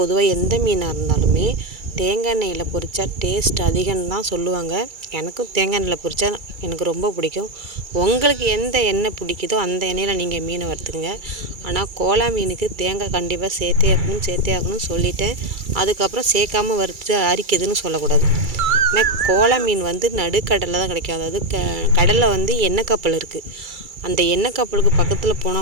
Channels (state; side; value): late; left; 2.3 ms